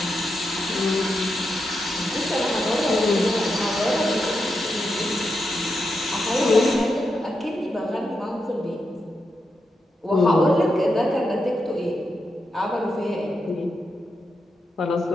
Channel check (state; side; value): normal; both; correlation 0.86